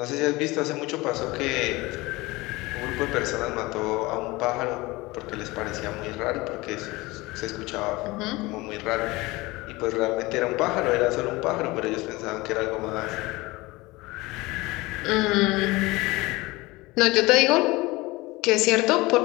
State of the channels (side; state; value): right; quieter; 21.7 dB